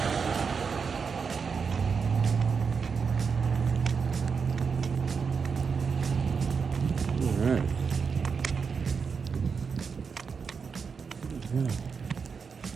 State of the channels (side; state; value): left; quieter; 5.7 dB